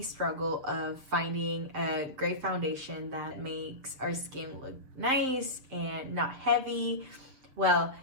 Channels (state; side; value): late; left; 7.6 ms